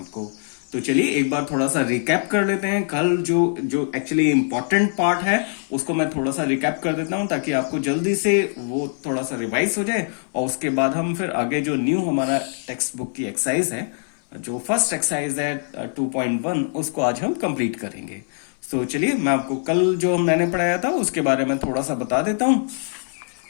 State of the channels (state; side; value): silent; right; 60 dB below the other